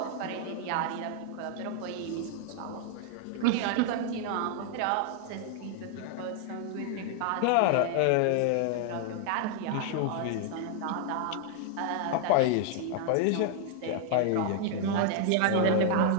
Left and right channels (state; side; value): different; both; correlation 0.00